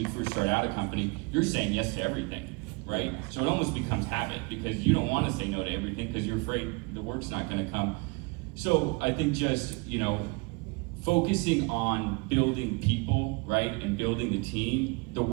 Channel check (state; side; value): quieter; left; 29.5 dB